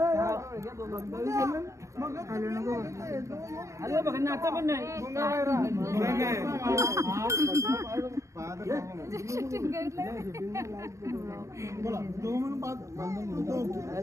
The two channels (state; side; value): late; left; 0.15 ms